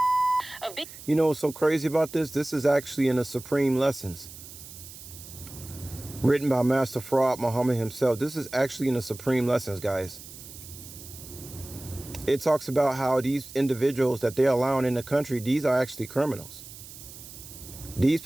You know what's so crazy about this? This is actually in the Supreme Lessons, written by Master Fraud Muhammad himself. This is actually in the Supreme Lessons, guys. It talks about how these individuals that they're allowing in the country, these are actually criminals. These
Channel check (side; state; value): right; noise; hiss, 15 dB below the sound